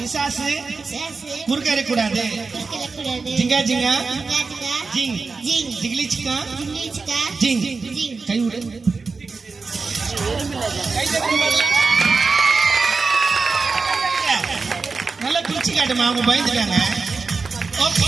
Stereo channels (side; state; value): left; quieter; 4.4 dB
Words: குறுக்க இருக்கக்கூடாது. ஜிங்கா ஜிங்கா ஜிங் ஜிகிலி சிக்கா ஜிங் கை விடு. நல்லா பிரிச்சு காட்டுமா அவங்க பயந்துட்டாங்க. ஓகே